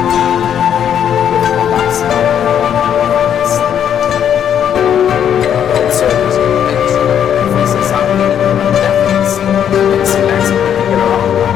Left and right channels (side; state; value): right; quieter; 9.1 dB